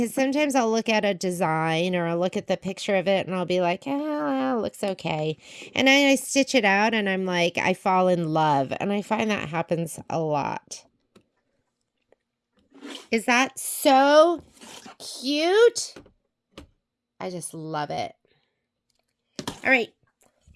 sometimes I'll look at a design or I'll look at the picture of it and I'll be like, oh, it looks okay. And then I stitch it out and I'm like, I fall in love. And I find that happens a lot. Is that so cute? I just love it. All right,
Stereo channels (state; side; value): identical; both; correlation 1.00